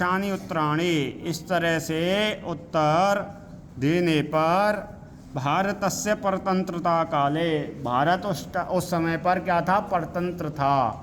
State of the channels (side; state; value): both; identical; correlation 1.00